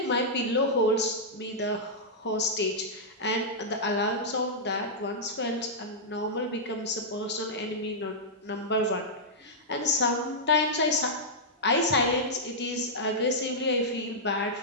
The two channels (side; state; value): both; normal; correlation -0.10